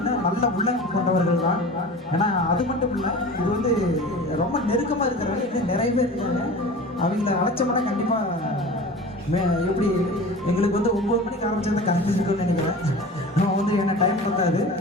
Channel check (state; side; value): normal; both; correlation 0.36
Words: நல்ல உள்ளங்கள் கொண்டவர்கள் தான். ஏன்னா அது மட்டும் இல்லை, இது வந்து ரொம்ப நெருக்கமாக இருக்கிறவங்க இன்னும் நிறைய பேர் இருக்காங்க. அவங்கள அழைச்சோம்னா கண்டிப்பாக எப்படி எங்களுக்கு வந்து 9 மணிக்கு ஆரம்பிச்சிருந்தா கரெக்ட் இருக்குன்னு நினைக்கிறேன். நம்ம வந்து என்ன டைம் பத்தாது.